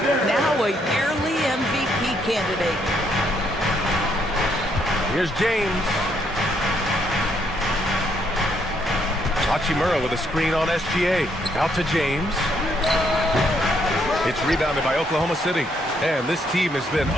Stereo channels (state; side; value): normal; both; correlation 0.72